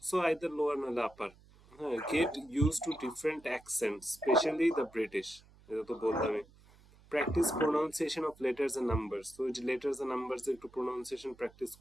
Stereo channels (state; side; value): noise; right; hum, 26 dB below the sound